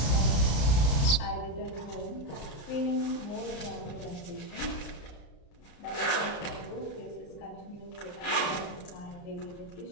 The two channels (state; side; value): late; right; 34 ms